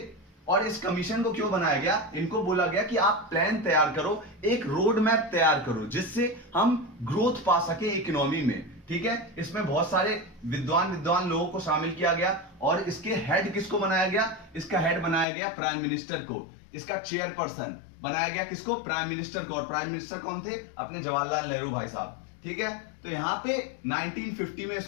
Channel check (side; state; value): right; drops out; at 15.2 s